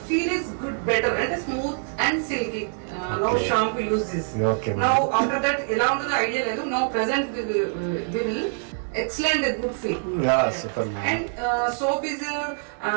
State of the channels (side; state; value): left; silent; 62 dB below the other